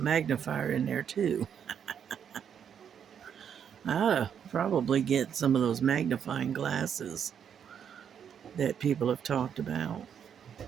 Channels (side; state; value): left; quieter; 8.1 dB